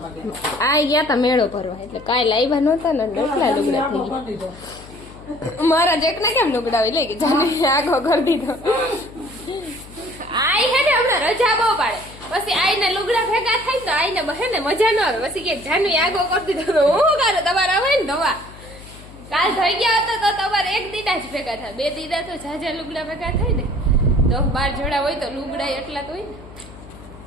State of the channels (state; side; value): noise; left; hum, 19 dB below the sound